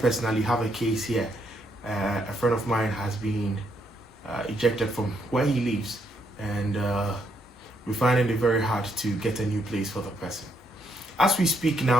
personally have a case here. A friend of mine has been ejected from where he lives, and we're finding it very hard to get a new place for the person. As we speak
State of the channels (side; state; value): both; normal; correlation 0.74